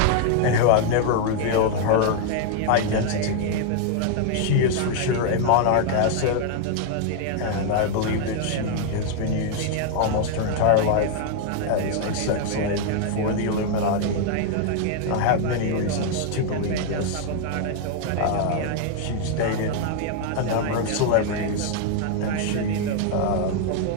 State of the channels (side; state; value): both; different; correlation 0.00